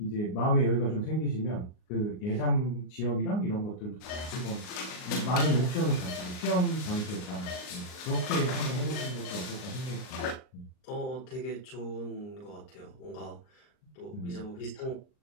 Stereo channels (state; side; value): late; right; 39 ms